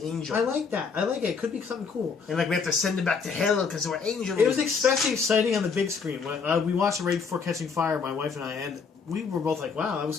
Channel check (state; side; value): quieter; right; 5.5 dB